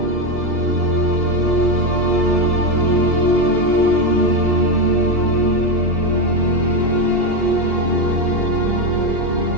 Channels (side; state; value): left; late; 2.7 ms